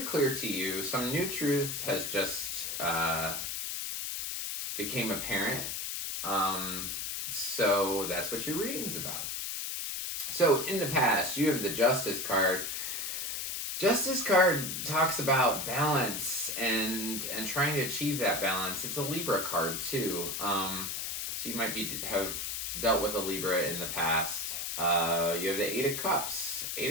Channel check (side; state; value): left; noise; hiss, 3 dB below the sound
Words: clear to you. Some new truth has just became apparent. So that's what your reading's about. So in the past, you have the Justice card. Justice card talks about balance and trying to achieve that balance. It's a Libra card too. So you might have dealt with a Libra in the past. You have the 8 of Cups.